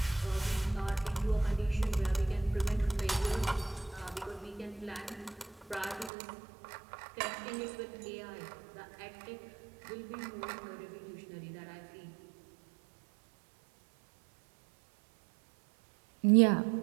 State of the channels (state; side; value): drops out; left; at 6.1 s